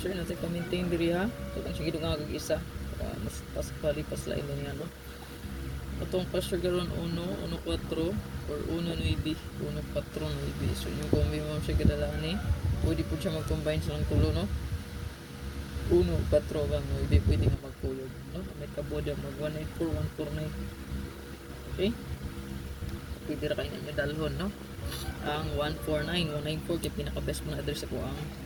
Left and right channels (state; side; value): identical; both; correlation 1.00